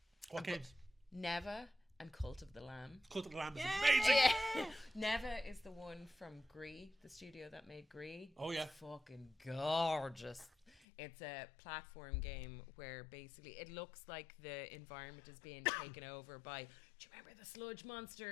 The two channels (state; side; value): drops out; right; at 10.8 s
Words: What games? Neva and Cult of the Lamb. Cult of the Lamb is amazing. Yeah. Neva is the one from Gree, the studio that made Gree. Oh yeah. It's fucking gorgeous. It's a platform game where basically it looks like the environment is being taken over by, do you remember the sludge